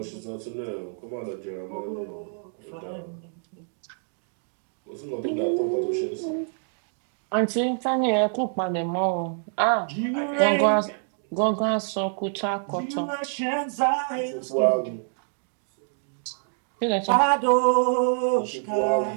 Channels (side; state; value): left; silent; digital silence